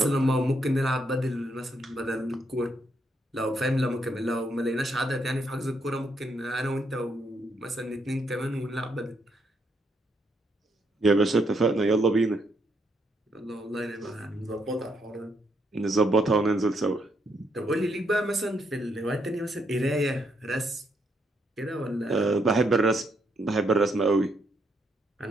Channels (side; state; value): both; normal; correlation 0.76